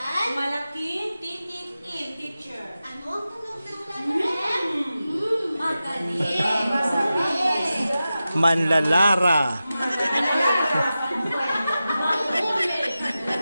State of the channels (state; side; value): inverted; both; correlation -0.93